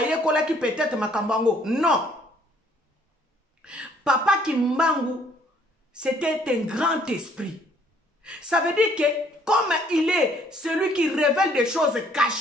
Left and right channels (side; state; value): both; normal; correlation 0.62